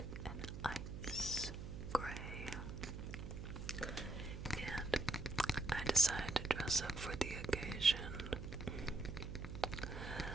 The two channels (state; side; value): noise; right; hum, 7 dB below the sound